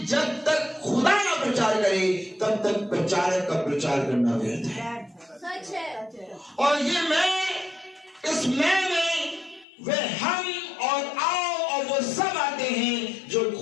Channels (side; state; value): right; drops out; at 9.7 s